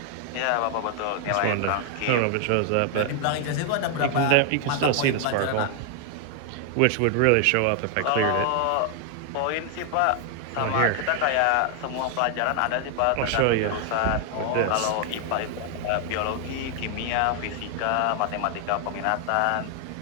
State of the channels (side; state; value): both; different; correlation 0.00